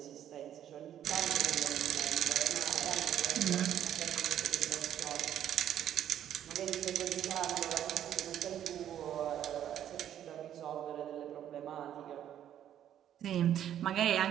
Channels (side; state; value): left; quieter; 10.6 dB